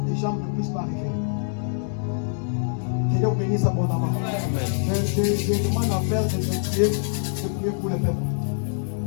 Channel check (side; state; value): right; silent; 62 dB below the other